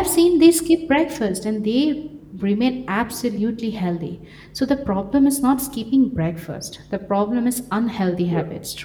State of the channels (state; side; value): identical; both; correlation 1.00